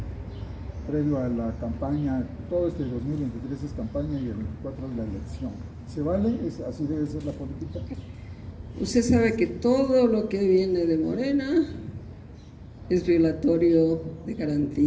previo a la campaña. Todo este 2023 es campaña y el 24 es la elección. ¿Se vale? ¿Así debe ser la política? Usted sabe que todo lo que viene de Morena es violatorio de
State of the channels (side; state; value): both; identical; correlation 1.00